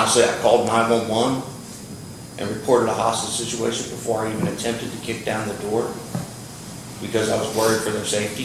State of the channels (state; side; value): identical; both; correlation 1.00